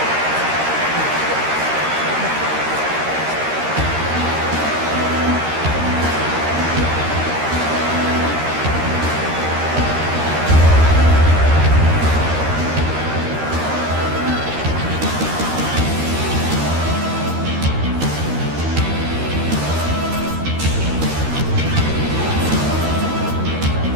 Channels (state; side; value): late; left; 13 ms